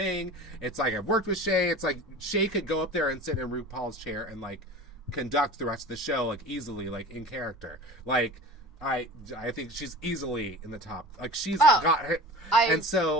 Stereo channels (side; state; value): both; normal; correlation 0.36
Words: It's like, I've worked with Shay. It's like, Shay could go up there and sit in RuPaul's chair and, like, conduct the rest of the show, like, easily, like, in character. Like, I think she's easily in the top. Like, she's got her. And